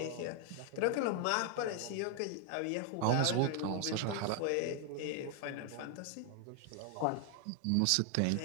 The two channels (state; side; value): different; both; correlation 0.00